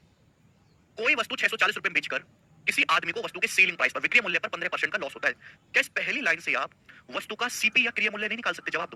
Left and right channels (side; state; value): both; identical; correlation 1.00